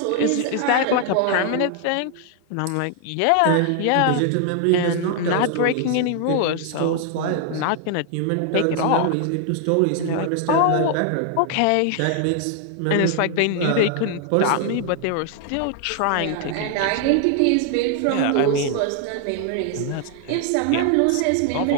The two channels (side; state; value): both; different; correlation 0.00